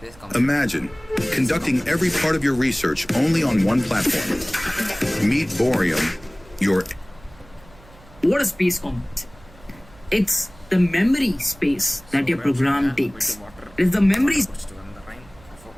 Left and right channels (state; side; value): noise; right; hum, 24 dB below the sound